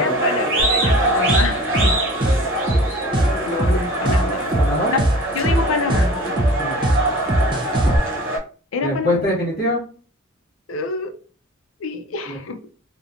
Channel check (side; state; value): both; normal; correlation 0.43